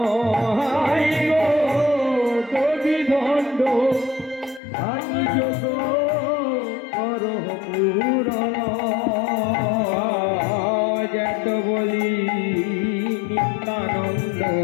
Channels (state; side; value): drops out; right; at 4.6 s